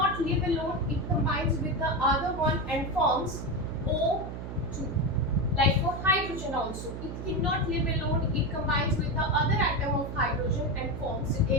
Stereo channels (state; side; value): noise; right; hum, 7 dB below the sound